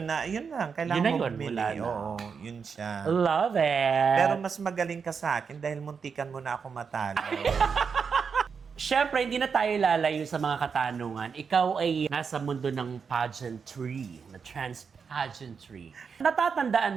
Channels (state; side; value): quieter; left; 5.9 dB